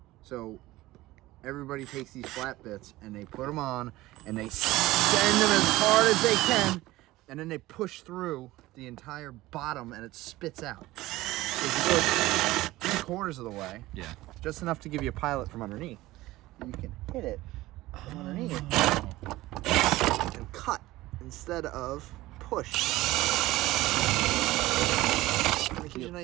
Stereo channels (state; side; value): quieter; left; 17.9 dB